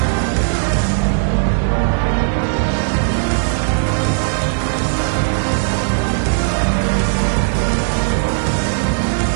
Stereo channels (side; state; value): left; silent; digital silence